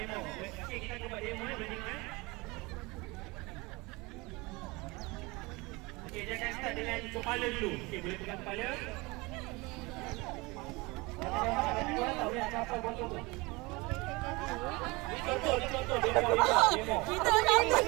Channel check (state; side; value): quieter; left; 24.4 dB